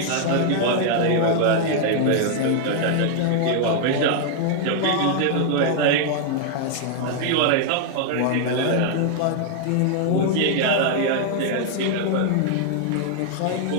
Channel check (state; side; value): different; both; correlation 0.00